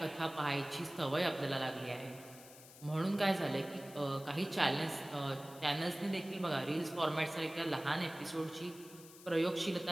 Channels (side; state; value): left; noise; hiss, 18 dB below the sound